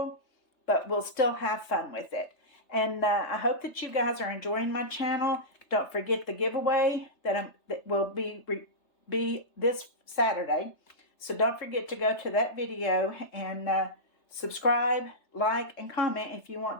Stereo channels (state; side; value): late; right; 3.3 ms